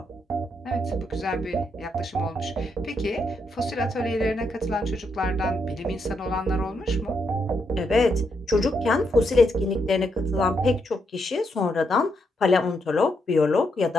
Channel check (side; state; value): both; normal; correlation 0.79